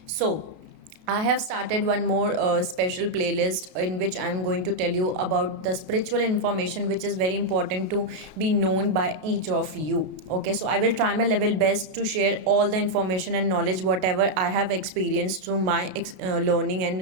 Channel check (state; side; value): late; left; 32 ms